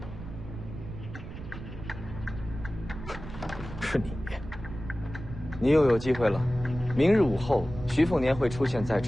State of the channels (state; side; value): noise; right; rumble, 11 dB below the sound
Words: 是你。你又有机会了。明日午后，徐凤年会出现在